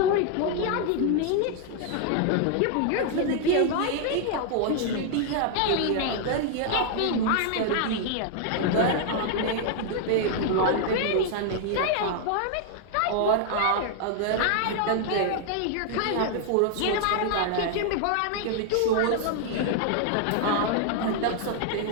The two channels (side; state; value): both; different; correlation 0.00